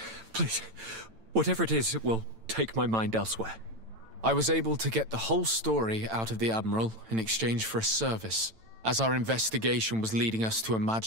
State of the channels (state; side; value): late; left; 9.0 ms